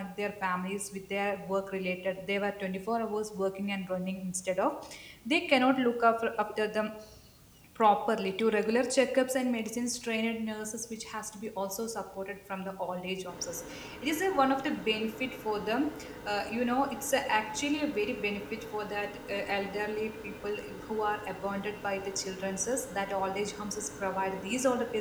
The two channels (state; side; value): identical; both; correlation 1.00